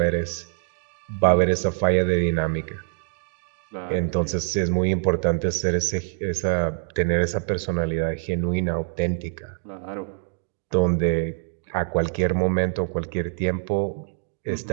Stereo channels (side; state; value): left; silent; 62 dB below the other